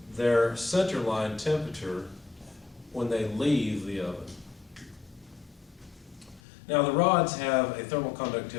their center line temperature when they leave the oven. Now the rods have a thermal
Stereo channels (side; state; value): right; drops out; at 6.4 s